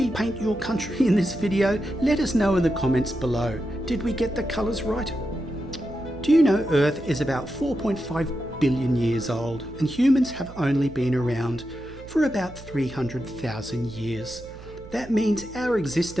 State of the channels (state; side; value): noise; right; hum, 17 dB below the sound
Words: paint your country in this video, let us know in the comments below. Did we get the colours right? Do you know Earth is about 4.5 billion years old and humans have only been around for about 300,000 years. That means our